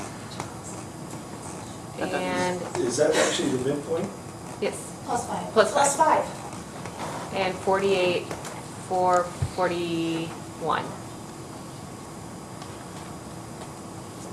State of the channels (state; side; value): identical; both; correlation 1.00